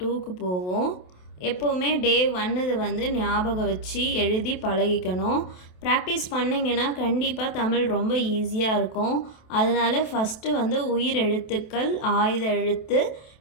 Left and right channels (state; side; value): late; right; 27 ms